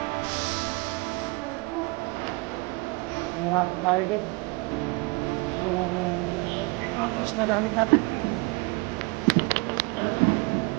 Nangyakas tayo din. So, tapos na gamit natin.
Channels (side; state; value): left; quieter; 28.0 dB